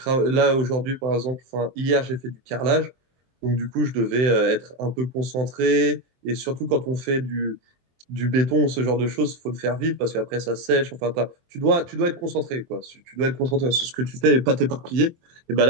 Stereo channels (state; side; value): late; left; 23 ms